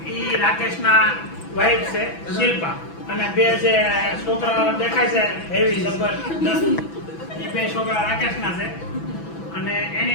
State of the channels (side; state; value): right; late; 6.0 ms